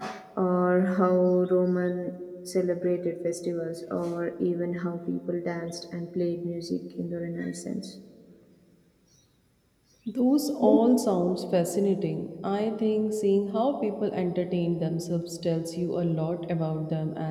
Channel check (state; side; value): identical; both; correlation 1.00